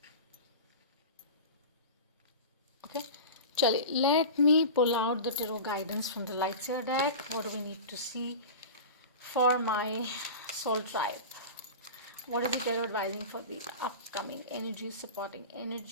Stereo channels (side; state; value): both; inverted; correlation -0.31